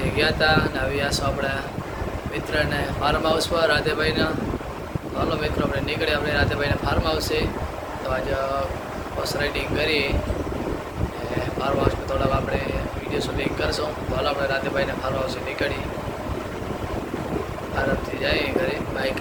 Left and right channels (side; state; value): both; identical; correlation 1.00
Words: ગયા હતા અને આવી આસો આપણા મિત્રને ફાર્મ હાઉસ પર રાધેભાઈના. તો હાલો મિત્રો આપણે નીકળીએ આપણે રાધેભાઈના ફાર્મ હાઉસે. તો આજે બસ રાઇડિંગ કરી ફાર્મ હાઉસમાં થોડાક આપણે વિડીયો શૂટિંગ કરશું. તો હાલો આપણે રાધેભાઈના ફાર્મ હાઉસે નીકળી આરામથી જઈએ ઘરે બાઇક